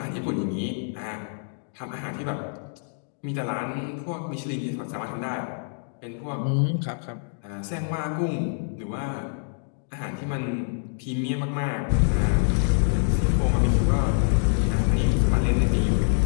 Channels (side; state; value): right; silent; digital silence